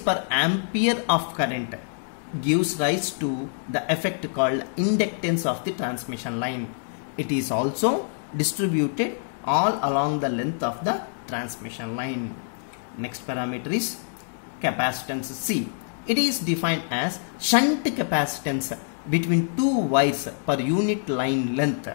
per ampere of current gives rise to the effect called inductance of the transmission line. It is also distributed all along the length of the transmission line. Next parameter is capacitance C. It is defined as shunt capacitance between two wires per unit line length.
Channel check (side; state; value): right; silent; digital silence